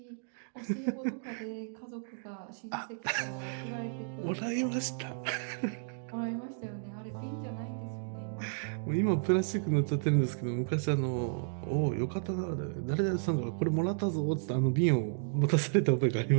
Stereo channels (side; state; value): left; silent; digital silence